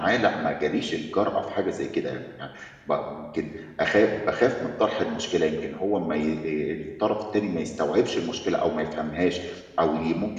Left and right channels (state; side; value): identical; both; correlation 1.00